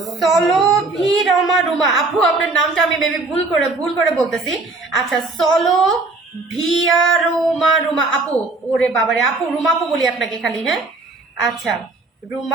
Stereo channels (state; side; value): quieter; left; 3.4 dB